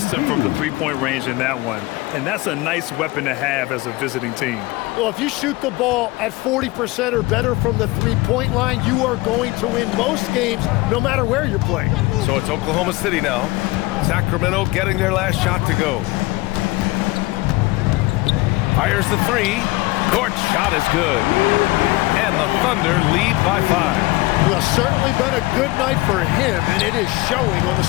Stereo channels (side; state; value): right; quieter; 21.2 dB